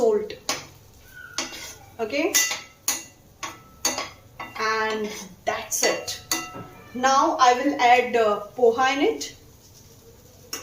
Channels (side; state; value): both; identical; correlation 1.00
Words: Okay, and that's it. Now I will add poha in it.